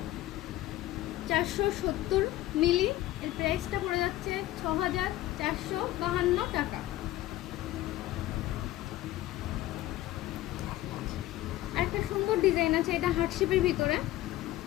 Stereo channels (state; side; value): quieter; right; 15.6 dB